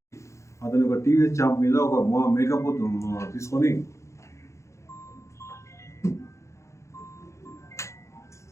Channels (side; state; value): right; late; 0.14 ms